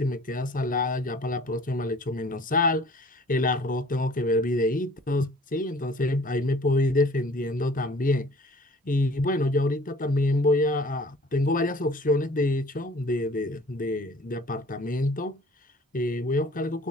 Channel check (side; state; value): both; normal; correlation 0.50